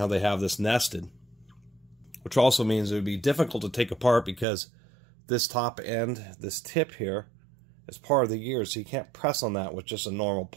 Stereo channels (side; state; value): left; drops out; at 4.5 s